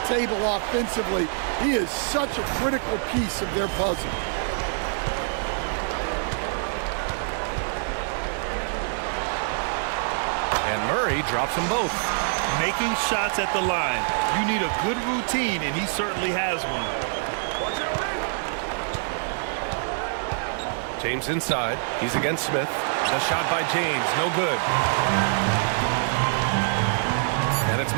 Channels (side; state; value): left; silent; digital silence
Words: table offensively. He is such a critical piece of their puzzle. And Murray drops them both. Making shots at the line. You need a good routine, and he certainly has one. James inside. He's against Smith. The shot by James, no good. And it's